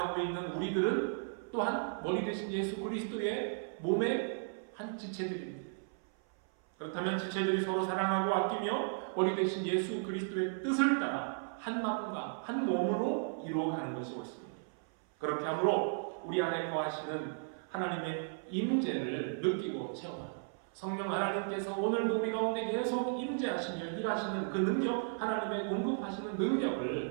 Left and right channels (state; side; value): silent; left; 54 dB below the other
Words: 있는 우리들은 또한 머리 대신 예수 그리스도의 몸의 한 지체들입니다. 그렇다면 지체들이 서로 사랑하고 아끼며 머리 대신 예수 그리스도의 뜻을 따라 한 마음과 한 몸으로 이루어가는 것이 옳습니다. 그렇게 함으로 우리 안에 거하시는 하나님의 임재를 느끼고 체험하고 성령 하나님께서 오늘도 우리 가운데 계속 임재하시며 일하시는 그 능력, 하나님의 공급하시는